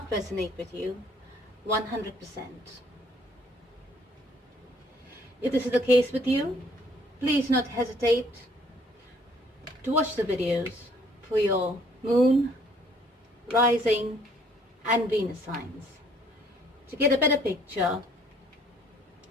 resonate with you 100%. If this is the case with you, please do not hesitate to watch the videos for your Moon, Rising and Venus signs to get a better picture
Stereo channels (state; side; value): normal; both; correlation 0.61